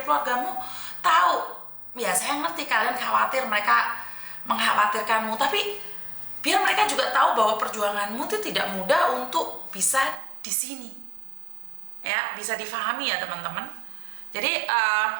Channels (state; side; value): drops out; left; at 10.2 s